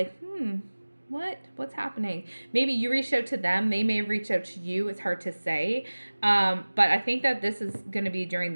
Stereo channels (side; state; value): both; inverted; correlation -1.00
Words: what's happening? Maybe you reached out to them. They may have reached out to you. It's hard to say. But I think that this is going to be during